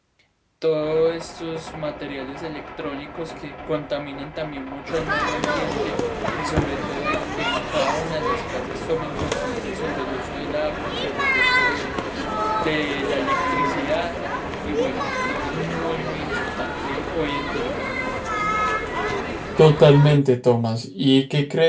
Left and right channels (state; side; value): identical; both; correlation 1.00